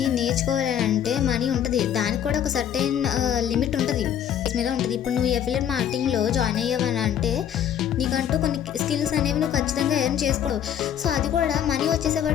నేర్చుకోవాలంటే మనీ ఉంటుంది, దానికి కూడా ఒక సర్టెన్ లిమిట్ ఉంటుంది మీద ఉంటుంది. ఇప్పుడు నువ్వు అఫిలియేట్ మార్కెటింగ్లో జాయిన్ అయ్యావని అంటే నీకంటూ కొన్ని స్కిల్స్ అనేవి నువ్వు ఖచ్చితంగా ఎర్న్ చేసుకోవు. సో అది కూడా మనీ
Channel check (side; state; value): right; quieter; 9.7 dB